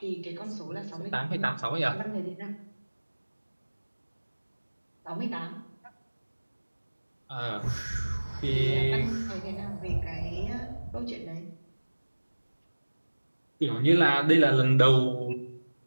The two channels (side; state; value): both; inverted; correlation -1.00